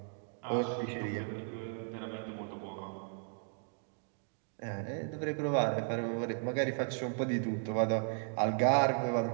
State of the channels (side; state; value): left; silent; 54 dB below the other